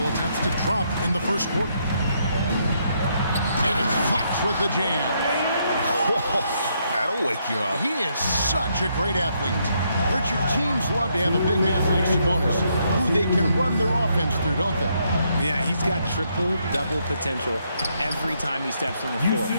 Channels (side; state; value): both; inverted; correlation -0.75